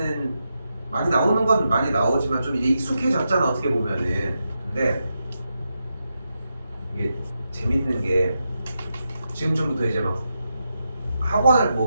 많이 나오는 건 많이 나오지만 좀 이제 익숙해졌잖아 어떻게 보면은. 근데 이게 재밌는 게 지금쯤부터 이제 막 학원을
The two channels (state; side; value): inverted; both; correlation -0.86